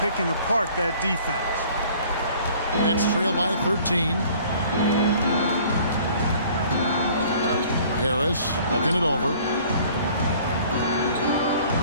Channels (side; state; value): both; inverted; correlation -0.53